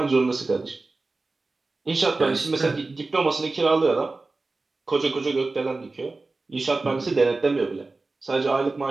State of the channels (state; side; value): quieter; left; 3.5 dB